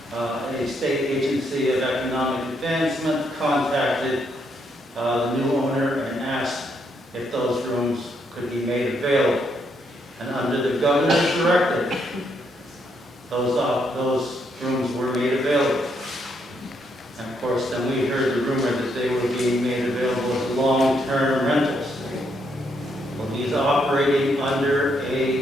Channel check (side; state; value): both; normal; correlation 0.75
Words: a state agency of economic advancement contacted the new owner and asked if those rooms could be made available. And under the governor's directive, those rooms were made available. And of course, then we heard the rumor that they were being made available as long-term rentals. Well, he's operating under